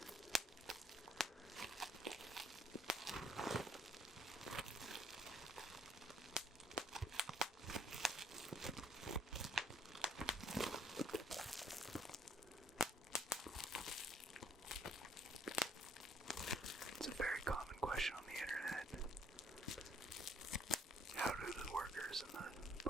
It's a very common question on the internet. How do the workers in the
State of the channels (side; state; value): both; normal; correlation 0.64